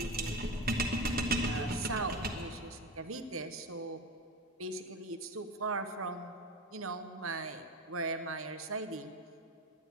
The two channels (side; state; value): both; normal; correlation 0.24